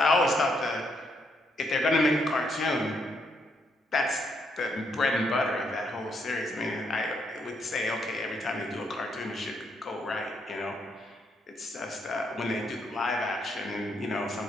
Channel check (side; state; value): both; normal; correlation 0.75